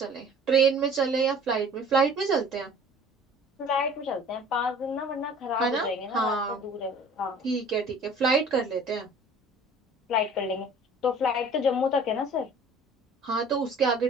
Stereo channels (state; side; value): normal; both; correlation 0.48